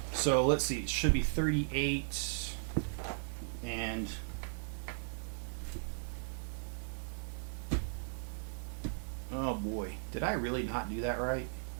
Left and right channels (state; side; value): silent; left; 53 dB below the other